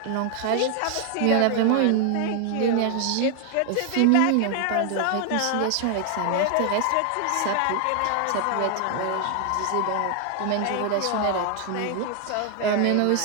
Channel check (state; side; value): different; both; correlation 0.00